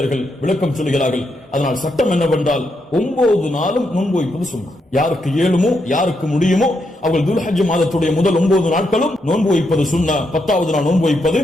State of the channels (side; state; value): both; normal; correlation 0.81